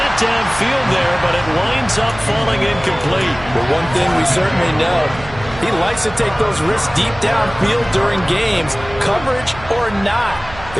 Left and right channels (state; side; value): noise; right; hum, 15 dB below the sound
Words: downfield there, but it winds up falling incomplete. But one thing we certainly know, he likes to take those risks deep downfield during games, coverage or not.